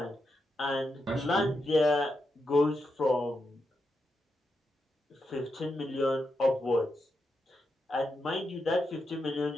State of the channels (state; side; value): normal; both; correlation 0.85